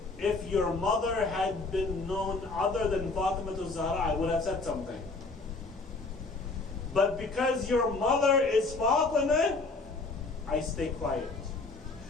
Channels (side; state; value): right; quieter; 3.6 dB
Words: if your mother had been known other than Fatima Al-Zahra, I would have said something. But because your mother is Fatima, I stay quiet.